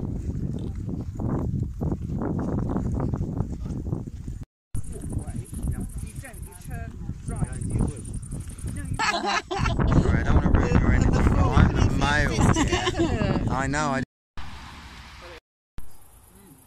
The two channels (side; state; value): both; identical; correlation 1.00